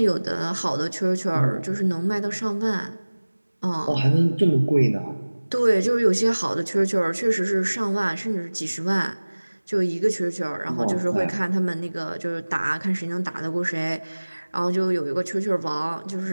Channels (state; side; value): inverted; both; correlation -1.00